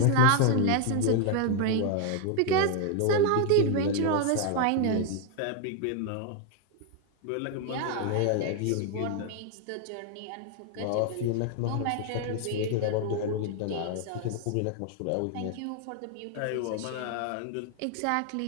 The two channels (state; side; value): different; both; correlation 0.00